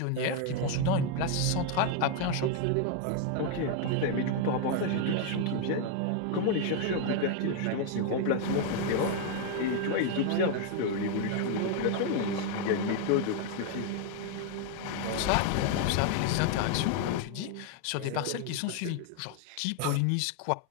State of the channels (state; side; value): different; both; correlation 0.00